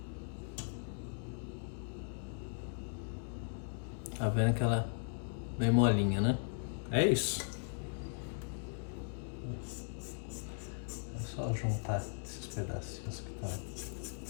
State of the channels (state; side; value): silent; right; digital silence